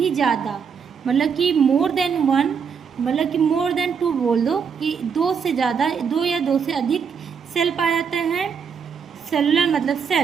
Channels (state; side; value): quieter; left; 6.5 dB